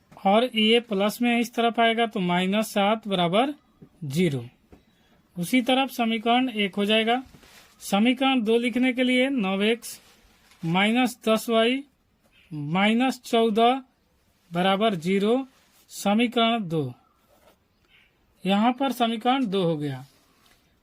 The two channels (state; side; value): identical; both; correlation 1.00